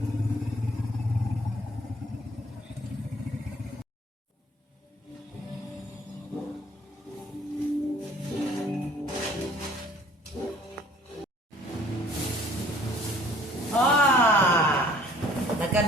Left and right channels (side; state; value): both; normal; correlation 0.55